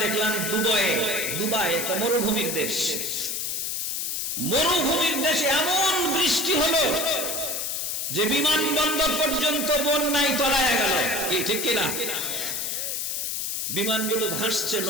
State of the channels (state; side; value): noise; left; hiss, 2 dB below the sound